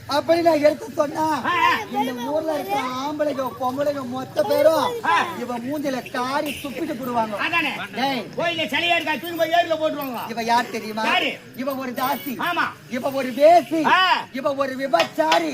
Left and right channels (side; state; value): both; identical; correlation 1.00